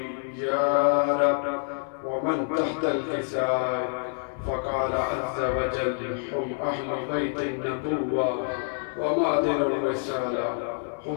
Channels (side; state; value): right; silent; digital silence